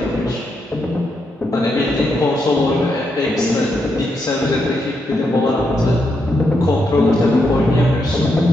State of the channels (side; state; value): both; normal; correlation 0.81